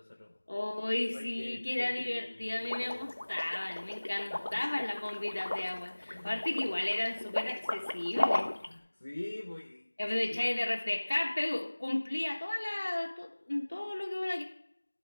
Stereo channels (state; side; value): inverted; both; correlation -1.00